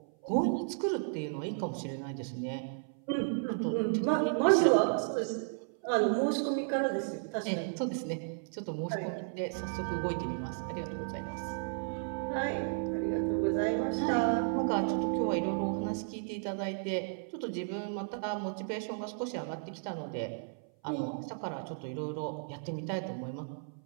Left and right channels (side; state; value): left; silent; 55 dB below the other